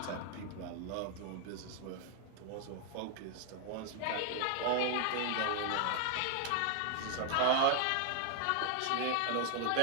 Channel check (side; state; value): both; different; correlation 0.00